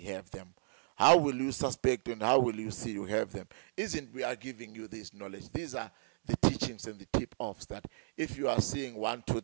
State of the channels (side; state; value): left; silent; digital silence